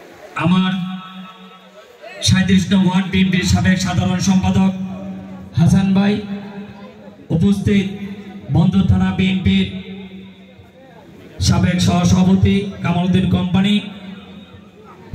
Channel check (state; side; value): identical; both; correlation 1.00